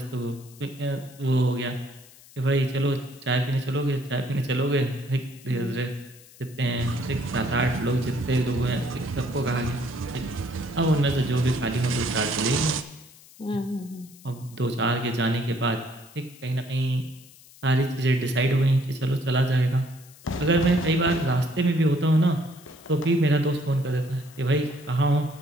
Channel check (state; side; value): noise; left; hiss, 23 dB below the sound